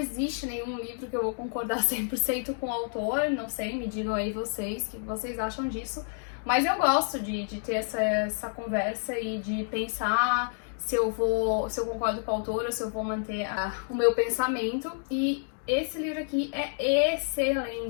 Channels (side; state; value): right; silent; digital silence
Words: nenhum livro que eu vou concordar 100% com o autor, não sei, me digam aí vocês, o que vocês acham disso, mas eu gosto de ter essa conversa e de pensar se eu concordo com o autor ou se eu vou manter o meu pensamento, e esse livro aqui é